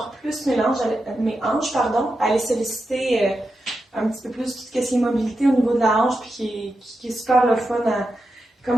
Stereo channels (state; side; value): normal; both; correlation 0.88